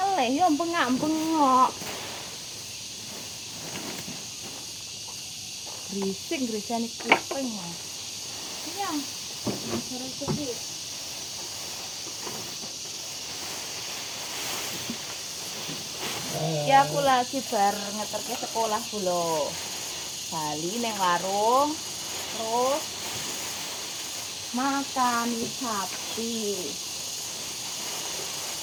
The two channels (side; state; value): both; identical; correlation 1.00